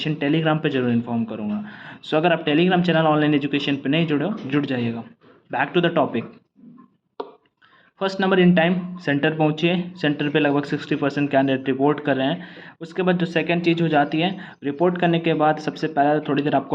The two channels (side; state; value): both; identical; correlation 1.00